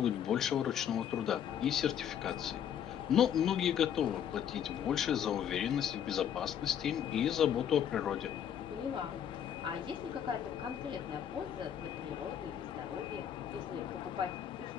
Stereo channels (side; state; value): right; quieter; 9.2 dB